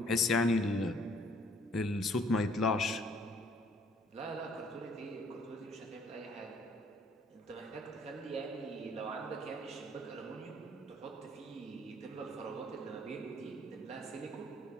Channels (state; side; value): normal; both; correlation 0.61